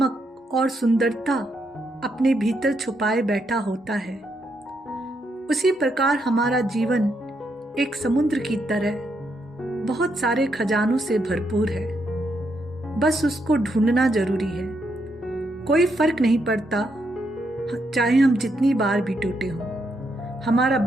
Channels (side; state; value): both; normal; correlation 0.79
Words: और सुंदरता अपने भीतर छुपाए बैठा होता है। उसी प्रकार हमारा जीवन एक समुद्र की तरह बहुत सारे खजानों से भरपूर है। बस उसको ढूंढना जरूरी है। कोई फर्क नहीं पड़ता चाहे हम जितनी बार भी टूटे हों, हमारा